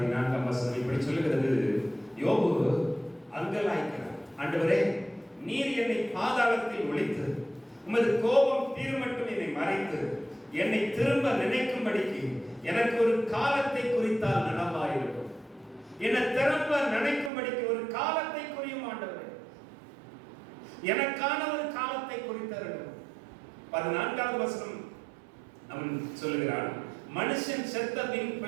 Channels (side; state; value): left; drops out; at 17.3 s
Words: வசனம் இப்படி சொல்லுகிறது, யோபு அங்கலாய்க்கிறார். ஆண்டவரே, நீர் என்னை பாதாளத்தில் ஒளித்து உமது கோபம் தீர்மட்டும் என்னை மறைத்து என்னை திரும்ப நினைக்கும்படிக்கு எனக்கு ஒரு காலத்தை குறித்தால் நலமாயிருக்கும். என்னை திரும்ப நினைக்கும்படிக்கு ஒரு காலத்தை குறியும் ஆண்டவரே, எனக்கான ஒரு காலத்தை குறித்தருளும். 14வது வசனம் அவன் சொல்லுகிறான், மனுஷன் செத்த பின்